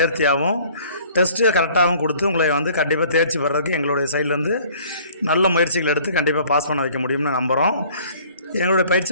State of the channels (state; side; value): inverted; both; correlation -0.54